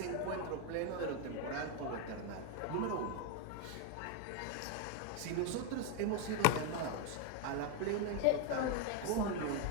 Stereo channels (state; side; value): different; both; correlation 0.01